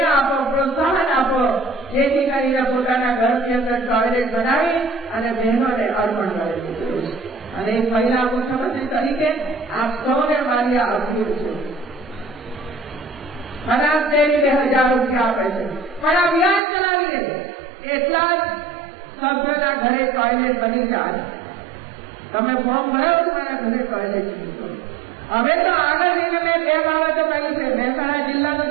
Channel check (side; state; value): left; drops out; at 16.6 s